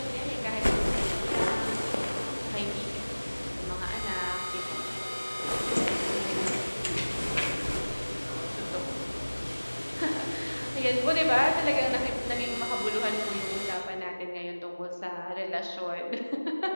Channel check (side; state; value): both; inverted; correlation -1.00